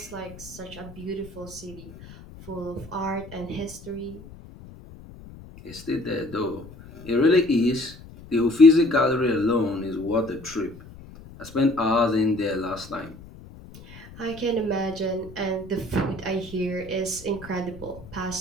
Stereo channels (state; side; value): noise; left; rumble, 18 dB below the sound